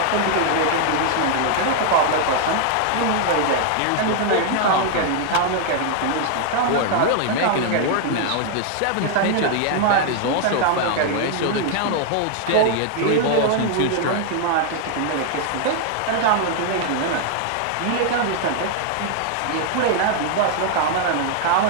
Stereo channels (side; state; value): both; different; correlation 0.00